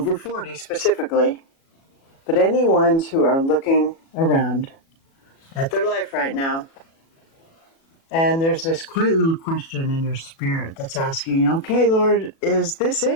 40 specifically, but any ones who are looking around at their life right now, and there's this quiet little question in your spirit that's asking, okay, Lord, is this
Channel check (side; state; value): right; late; 37 ms